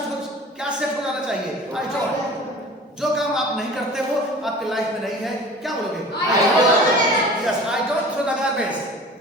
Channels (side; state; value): both; normal; correlation 0.42